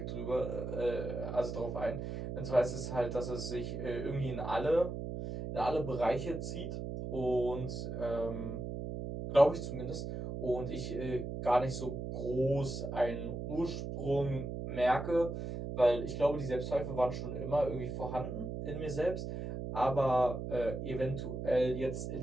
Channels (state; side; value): noise; right; hum, 5 dB below the sound